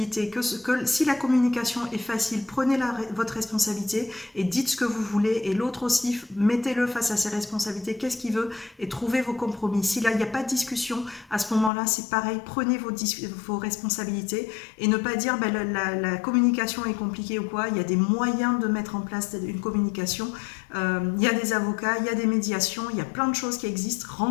Si la communication est facile, prenez votre responsabilité et dites ce que vous voulez. Et l'autre aussi, mettez-le face à ses responsabilités. Qu'est-ce qu'il veut? Et trouvez vos compromis. Si là, il n'y a pas de discussion, à ce moment-là, c'est pareil. Prenez vos responsabilités et ne pas dire la communication est compliquée ou quoi. Il y a des moyens de mettre en place une communication. Il y a des avocats, il y a des médiations, il y a plein de choses qui existent.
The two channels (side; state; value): right; drops out; at 11.7 s